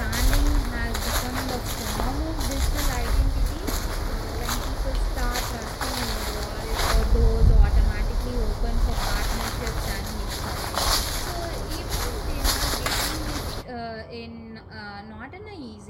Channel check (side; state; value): both; identical; correlation 1.00